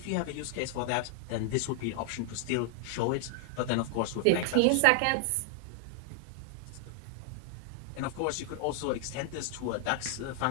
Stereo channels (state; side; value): different; both; correlation 0.00